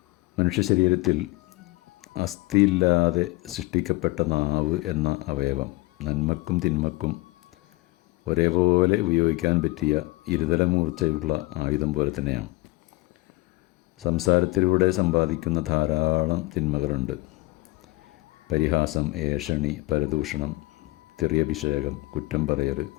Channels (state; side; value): quieter; right; 22.5 dB